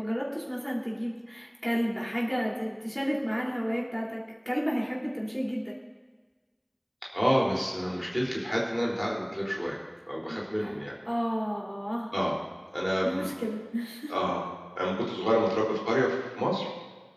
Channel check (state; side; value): identical; both; correlation 1.00